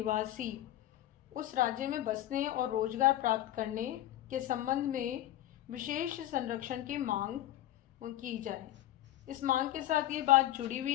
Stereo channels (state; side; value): quieter; right; 13.9 dB